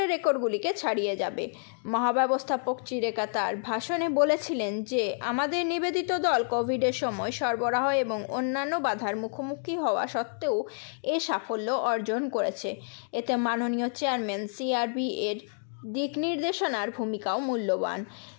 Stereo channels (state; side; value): silent; right; 59 dB below the other